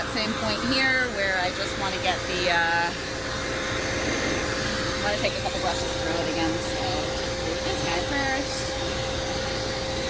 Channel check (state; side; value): identical; both; correlation 1.00